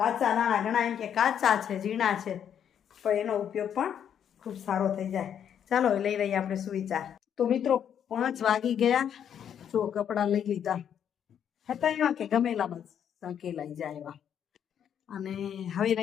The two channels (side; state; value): right; quieter; 8.9 dB